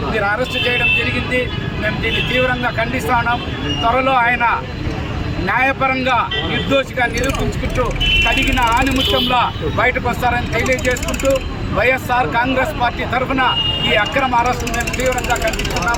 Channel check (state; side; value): identical; both; correlation 1.00